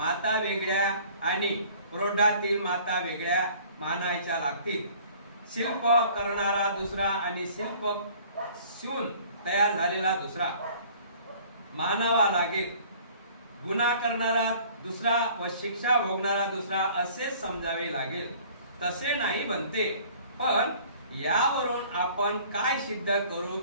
वेगळ्या आणि प्रौढातील माता वेगळ्या मानायच्या लागतील शिल्प करणारा दुसरा आणि शिल्प शिवून तयार झालेला दुसरा मानावा लागेल गुन्हा करणारा दुसरा व शिक्षा भोगणारा दुसरा असे समजावे लागेल तसे नाही बनते पण यावरून आपण काय सिद्ध करू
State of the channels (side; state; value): both; inverted; correlation -0.52